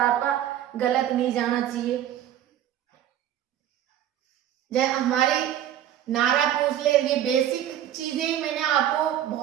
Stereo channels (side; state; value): left; quieter; 11.3 dB